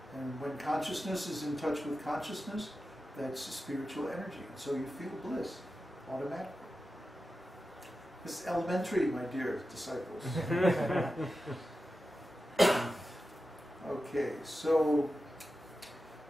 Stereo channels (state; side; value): normal; both; correlation 0.92